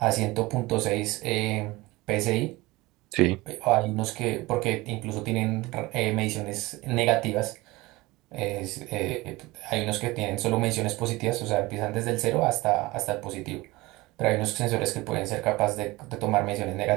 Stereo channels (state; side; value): quieter; left; 21.0 dB